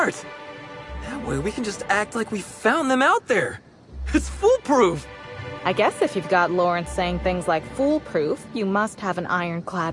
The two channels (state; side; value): identical; both; correlation 1.00